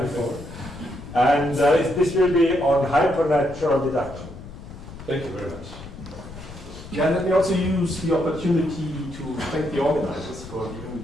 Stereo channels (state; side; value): noise; left; rumble, 14 dB below the sound